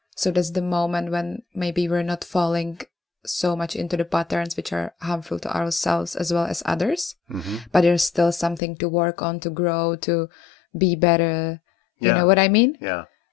So that's the moment when maybe we're not falling so much into the patterns which are harmful to ourselves as well as others. Mm-hmm. But there's still something to work on, to grow, to be better. You Yeah. know what I mean? Yeah.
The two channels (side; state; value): right; drops out; at 8.6 s